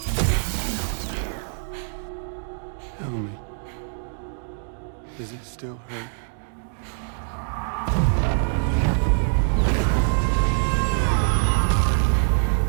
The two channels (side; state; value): left; silent; digital silence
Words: Tell me, does it still hurt?